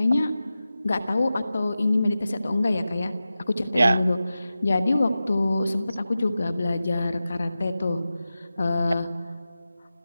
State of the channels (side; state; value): both; inverted; correlation -0.94